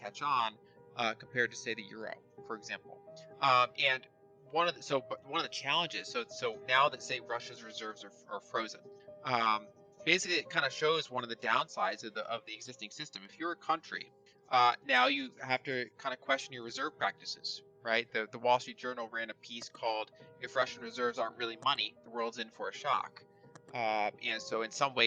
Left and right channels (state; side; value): identical; both; correlation 1.00